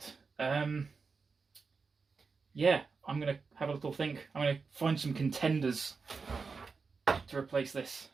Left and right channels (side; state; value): left; quieter; 4.8 dB